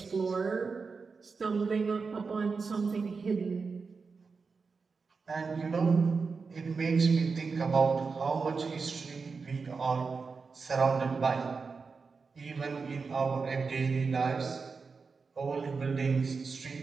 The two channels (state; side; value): quieter; left; 4.8 dB